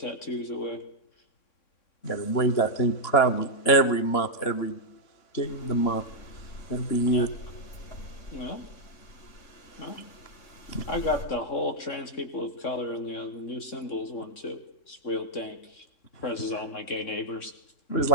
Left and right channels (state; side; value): late; right; 3.6 ms